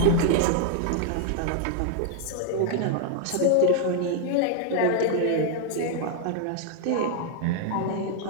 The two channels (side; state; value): both; different; correlation 0.00